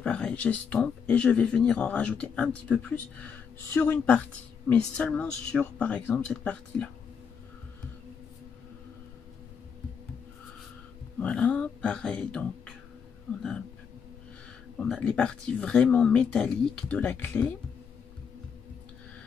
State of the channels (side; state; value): right; quieter; 6.5 dB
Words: j'estompe et je vais venir en rajouter un petit peu plus sur une partie, mais seulement sur, par exemple, cette partie-là. Voilà, pareil, donc, on a les parties vraiment métalliques de la clé,